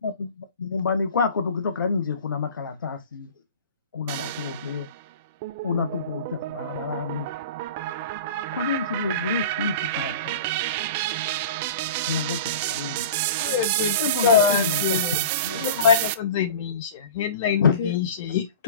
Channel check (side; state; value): both; inverted; correlation -0.36